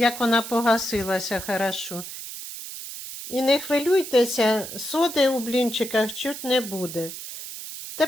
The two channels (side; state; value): right; noise; hiss, 10 dB below the sound